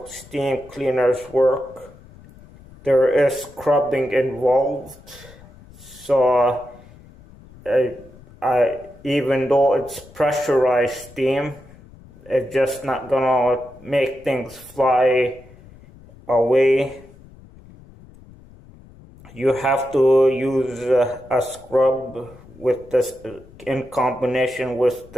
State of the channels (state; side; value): noise; left; rumble, 22 dB below the sound